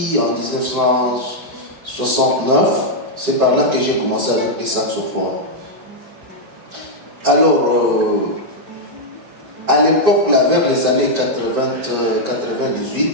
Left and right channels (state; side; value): late; left; 5.1 ms